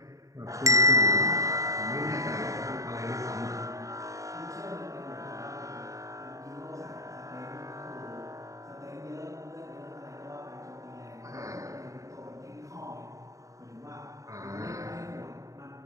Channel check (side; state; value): left; late; 0.16 ms